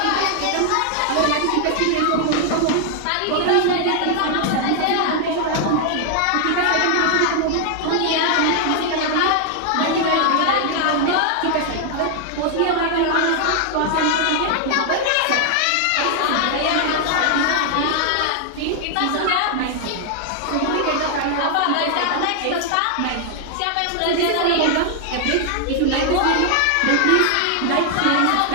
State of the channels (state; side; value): different; both; correlation 0.00